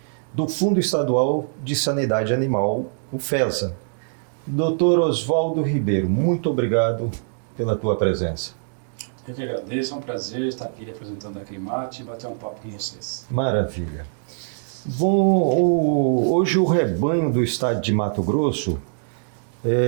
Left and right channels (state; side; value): silent; left; digital silence